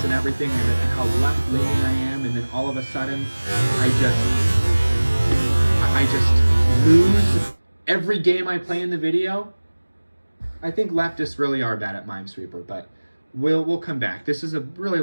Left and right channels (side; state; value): both; inverted; correlation -1.00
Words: and everything and how left-leaning I am, and then all of a sudden I just lose every game I play in the video. I think leftists really are bad at Minesweeper, but we'll come back. This is a really